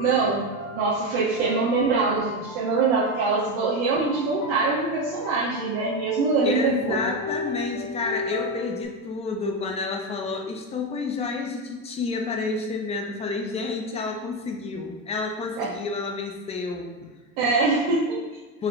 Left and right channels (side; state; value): both; normal; correlation 0.12